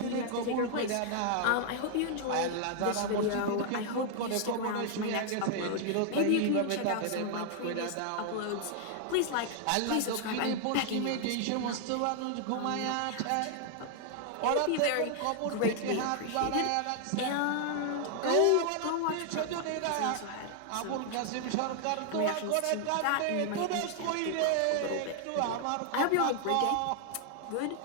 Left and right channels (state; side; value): different; both; correlation 0.00